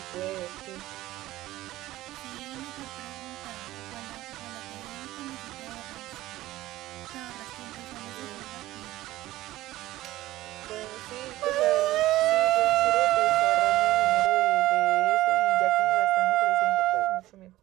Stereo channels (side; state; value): left; quieter; 16.2 dB